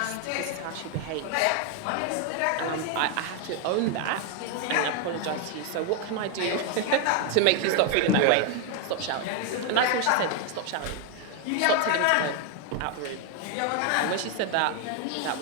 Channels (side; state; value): both; different; correlation 0.01